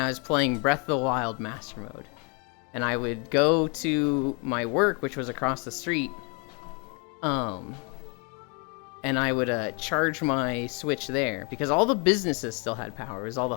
was playing Breath of the Wild Master Mode. And I would go to my work, which was across the street, and I would charge my Switch there, because all the businesses still had power. It was all the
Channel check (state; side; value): quieter; right; 34.5 dB